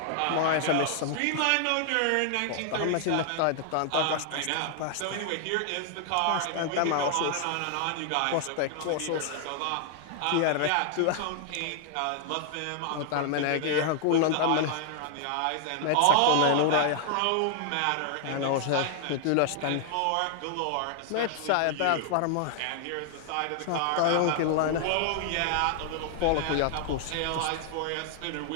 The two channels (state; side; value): different; both; correlation 0.00